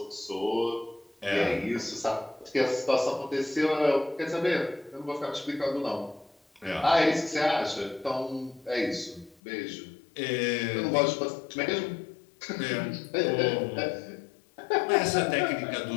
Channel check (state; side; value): drops out; right; at 9.4 s